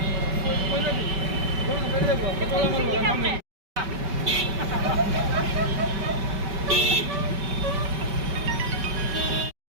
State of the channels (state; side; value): late; left; 5.2 ms